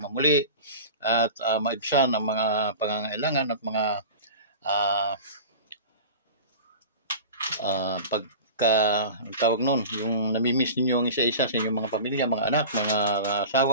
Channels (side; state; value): both; inverted; correlation -0.34